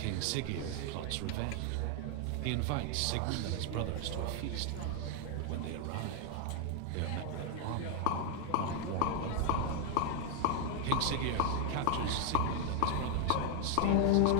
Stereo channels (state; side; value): different; both; correlation 0.00